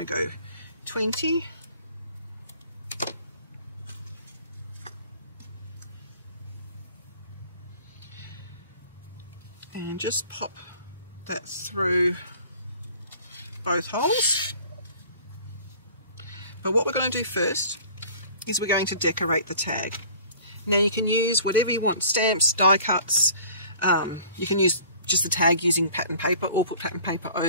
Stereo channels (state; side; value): inverted; both; correlation -0.49